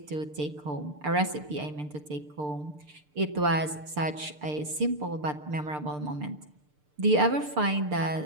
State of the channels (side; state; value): left; late; 6.7 ms